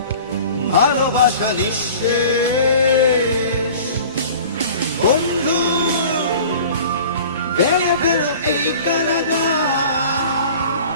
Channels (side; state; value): both; inverted; correlation -0.44